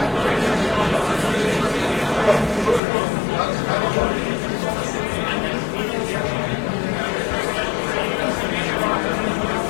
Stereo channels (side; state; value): right; drops out; at 2.8 s